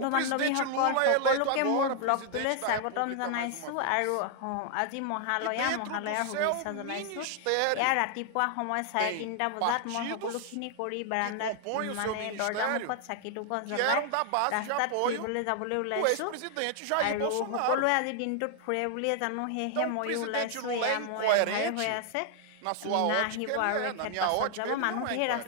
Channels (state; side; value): different; both; correlation 0.00